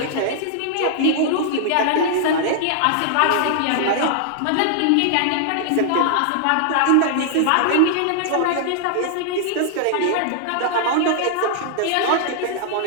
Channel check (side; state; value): both; different; correlation -0.01